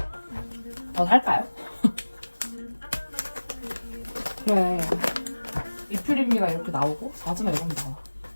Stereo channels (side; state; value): both; inverted; correlation -1.00